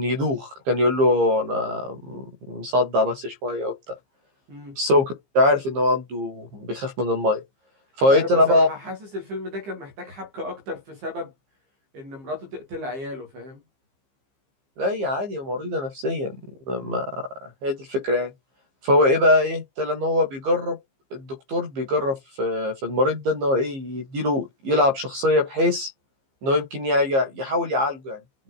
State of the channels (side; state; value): left; late; 15 ms